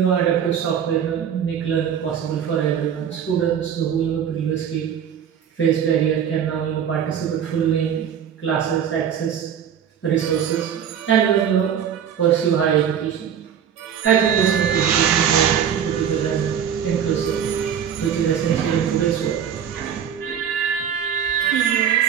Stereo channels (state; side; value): quieter; left; 8.5 dB